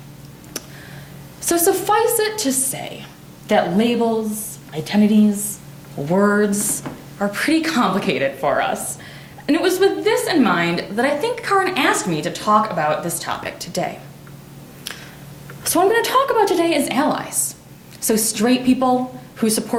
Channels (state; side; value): identical; both; correlation 1.00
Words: So suffice it to say that labels, identities, words are pretty complicated for us. And it was with this in mind that I think Kaelyn asked me to talk about this topic today. So what I'm going to talk about today is allies. So straight people who